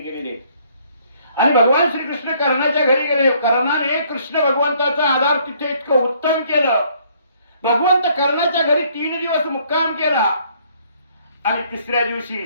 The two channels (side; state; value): both; inverted; correlation -0.64